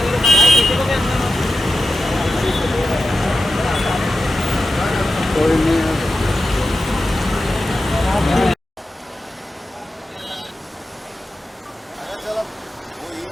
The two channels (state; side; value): normal; both; correlation 0.91